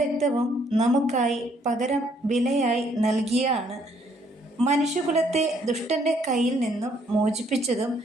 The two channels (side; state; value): both; normal; correlation 0.67